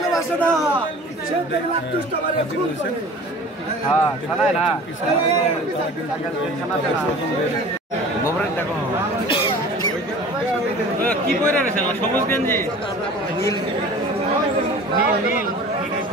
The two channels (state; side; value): normal; both; correlation 0.42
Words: না, সে দেখলে দুষ্ট মারে খুন করে। কি পরে রয়েছে সবুজ গেঞ্জি